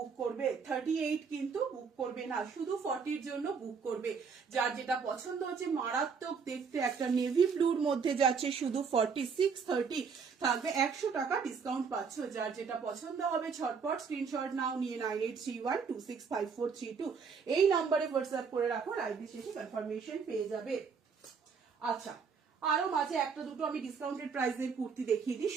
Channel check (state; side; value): quieter; left; 5.8 dB